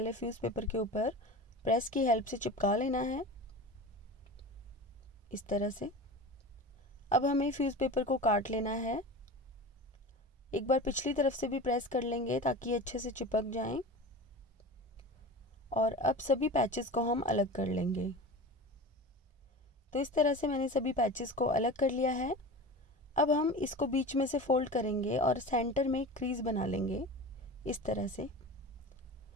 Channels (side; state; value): both; normal; correlation 0.32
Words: फ्यूज़ पेपर के ऊपर प्रेस की हेल्प से चिपका लेना है, इस तरह से। अब हमें फ्यूज़ पेपर को काट लेना है। एक बार पिछली तरफ से भी प्रेस कर लेंगे ताकि ये अच्छे से चिपक जाएं। और अब सभी पैचेस को हम अलग कर लेंगे। तो इस तरह से मैंने सभी पैचेस को अलग कर लिया है। अब हम इसको बीच में से फोल्ड करेंगे और सेंटर में क्रीज बना लेंगे, इस तरह से।